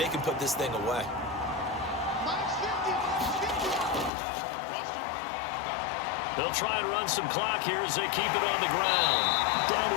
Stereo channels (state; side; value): drops out; right; at 4.1 s